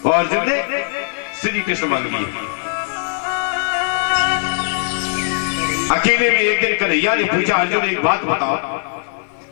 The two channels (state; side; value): silent; right; digital silence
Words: और अर्जुन ने श्री कृष्ण मांग लिए। अकेले में एक दिन कन्हैया ने पूछा, अर्जुन एक बात बताओ,